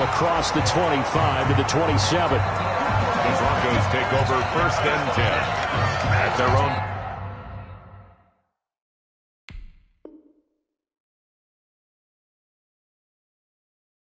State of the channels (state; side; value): identical; both; correlation 1.00